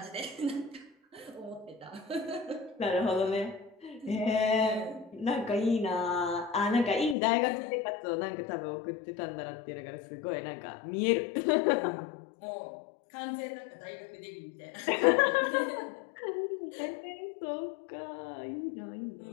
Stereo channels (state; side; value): drops out; right; at 7.2 s